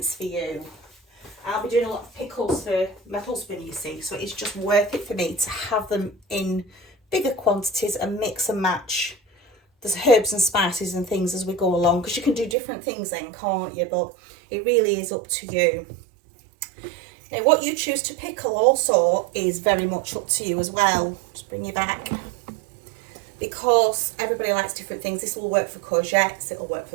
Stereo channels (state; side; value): drops out; left; at 12.6 s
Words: for you. I'll be doing a lot of pickles for my husband, you see, so it's just worth it for me to have them in bigger quantities and mix and match the herbs and spices and things as we go along, because you can do different things then, can't you? But it really is up to you. Now, what you choose to pickle also is very much up to you as well. Just bring you back. Because everybody likes different things. This will work for courgettes, it'll work